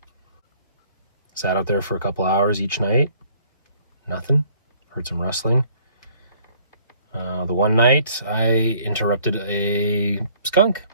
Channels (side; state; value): both; inverted; correlation -0.59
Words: Sat out there for a couple hours each night. Nothing. Heard some rustling. The one night I interrupted a skunk